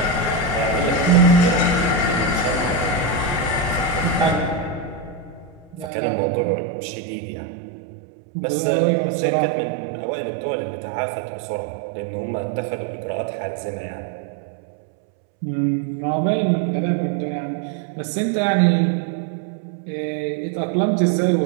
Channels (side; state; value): left; drops out; at 5.9 s